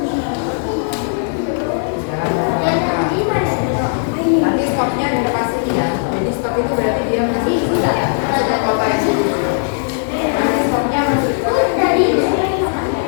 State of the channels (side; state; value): right; silent; digital silence